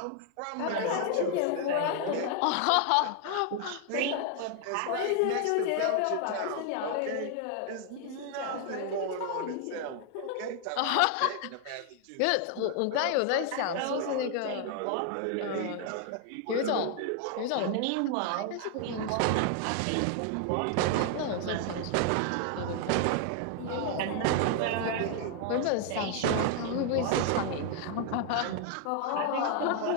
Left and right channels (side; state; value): both; different; correlation 0.00